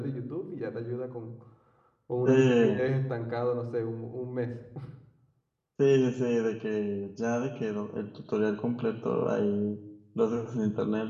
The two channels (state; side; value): identical; both; correlation 1.00